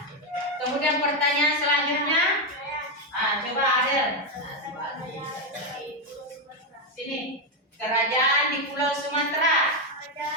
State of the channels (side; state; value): both; normal; correlation 0.05